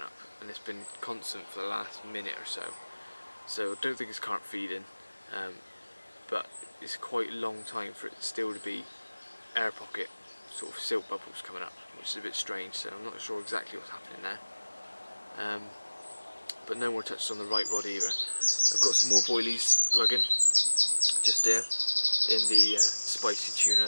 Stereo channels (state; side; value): inverted; both; correlation -1.00